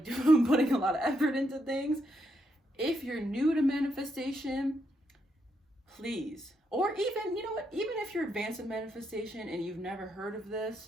putting a lot of effort into things, if you're new to manifestation, please, or even, you know what, even if you're advanced in manifestation and you've never heard of this,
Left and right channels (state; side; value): normal; both; correlation 0.79